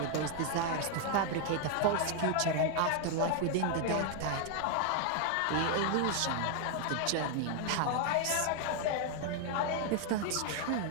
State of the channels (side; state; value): both; different; correlation 0.00